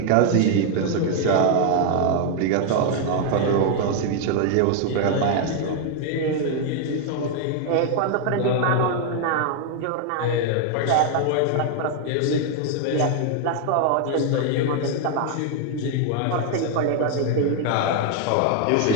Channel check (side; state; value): both; different; correlation 0.00